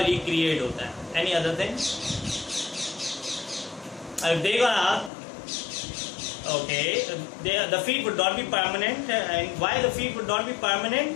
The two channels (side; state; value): right; drops out; at 5.1 s